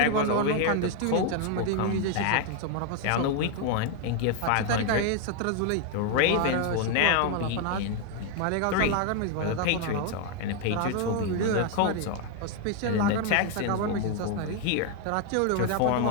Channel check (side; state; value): both; different; correlation 0.01